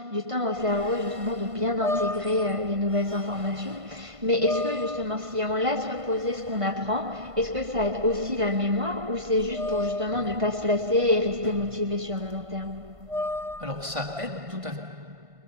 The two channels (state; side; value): late; left; 1.5 ms